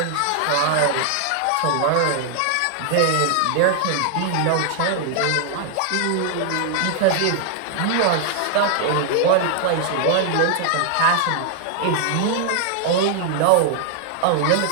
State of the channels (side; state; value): both; different; correlation 0.00